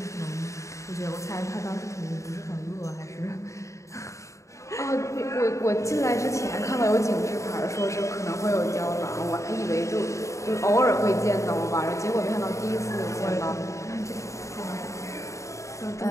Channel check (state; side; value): late; right; 0.15 ms